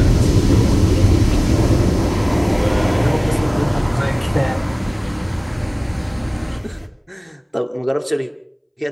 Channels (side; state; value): both; identical; correlation 1.00